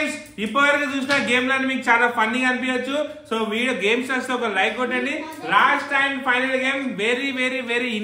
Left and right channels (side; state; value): both; identical; correlation 1.00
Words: ఇప్పటివరకు చూసిన గేమ్లను మీకు చాలా ఫన్నీగా అనిపించచ్చు. సో వీడియో గేమ్స్ వస్తే ఒక లైక్ కొట్టండి. Last and final game very very very